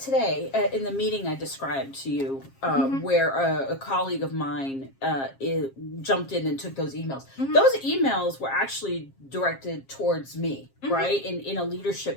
in the meeting I described to you, where a colleague of mine jumped in and took those emails. Those emails were actually directed towards me, right, in a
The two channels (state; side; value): late; right; 7.4 ms